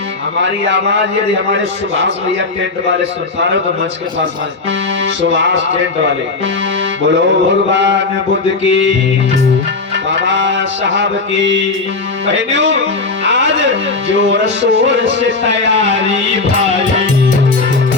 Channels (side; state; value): right; quieter; 3.8 dB